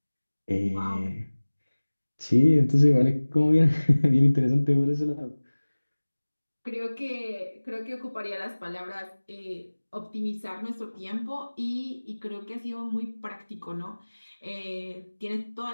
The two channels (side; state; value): both; inverted; correlation -1.00